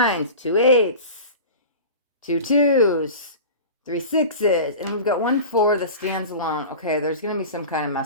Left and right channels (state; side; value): inverted; both; correlation -0.35